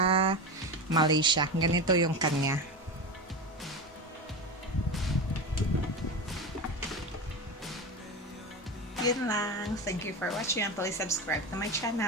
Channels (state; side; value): normal; both; correlation 0.22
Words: Malaysia. Ganito yung kanya. Yun lang. Thank you for watching and please subscribe to my channel.